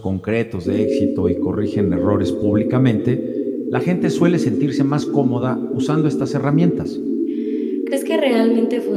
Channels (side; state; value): both; identical; correlation 1.00